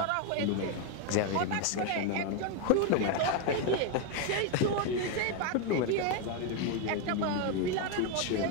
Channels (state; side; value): different; both; correlation 0.01